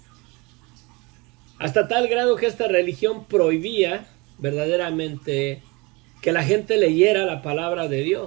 hasta tal grado que esta religión prohibía verdaderamente que la gente leyera la palabra de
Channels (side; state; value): left; quieter; 26.4 dB